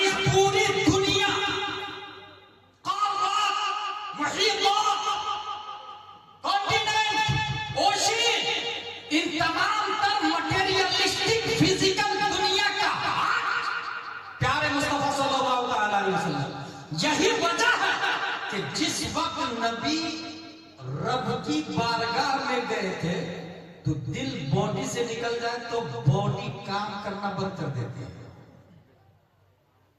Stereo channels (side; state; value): both; identical; correlation 1.00